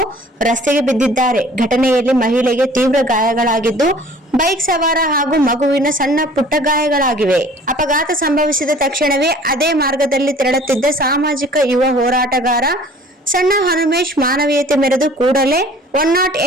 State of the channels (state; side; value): normal; both; correlation 0.50